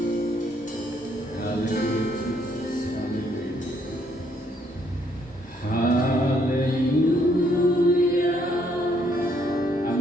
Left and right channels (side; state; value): both; normal; correlation 0.70